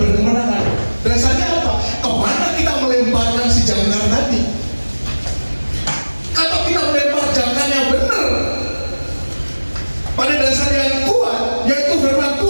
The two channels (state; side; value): inverted; both; correlation -1.00